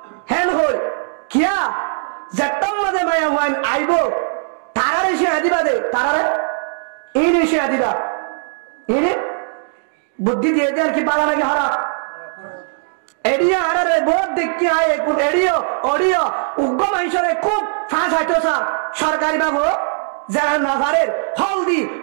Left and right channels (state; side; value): silent; left; digital silence